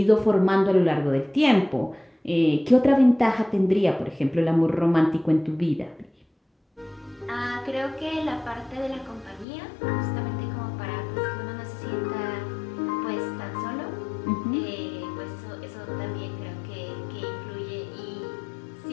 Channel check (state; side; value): drops out; right; at 9.5 s